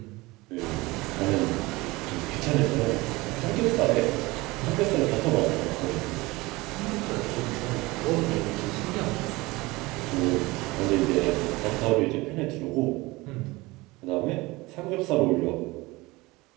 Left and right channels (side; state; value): left; quieter; 21.8 dB